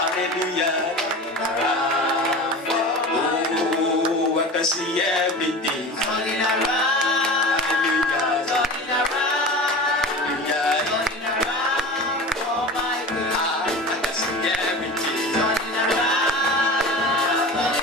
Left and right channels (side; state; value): both; normal; correlation 0.33